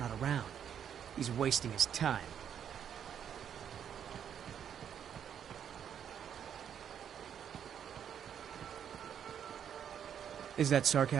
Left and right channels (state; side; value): quieter; left; 8.7 dB